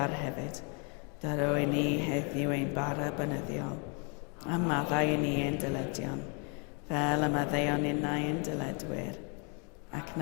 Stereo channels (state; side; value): quieter; right; 36.0 dB